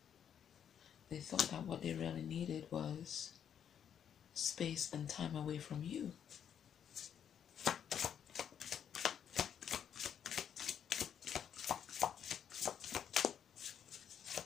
They thought that what they really needed was space and time away from you.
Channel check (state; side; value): quieter; right; 8.7 dB